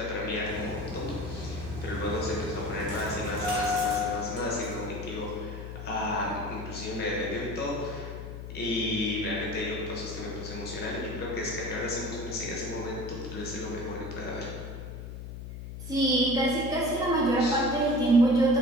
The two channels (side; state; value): left; noise; hum, 9 dB below the sound